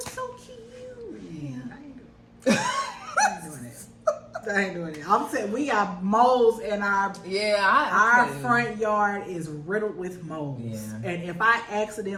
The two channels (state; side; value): identical; both; correlation 1.00